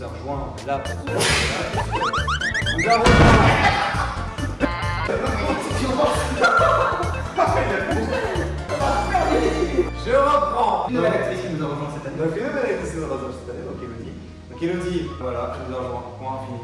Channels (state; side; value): identical; both; correlation 1.00